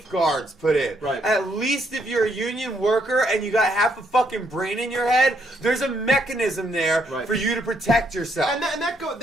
put in. Right. At least if you're a union worker and you got half a fucking brain in your head, there's a mechanism there Right. for you to protect yourself. and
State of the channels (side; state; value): both; normal; correlation 0.73